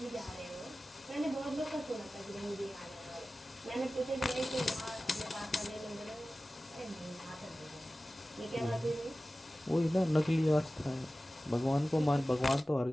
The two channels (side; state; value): both; normal; correlation 0.96